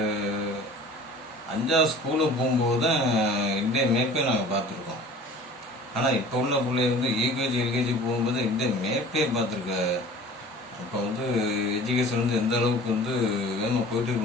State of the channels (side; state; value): both; normal; correlation 0.44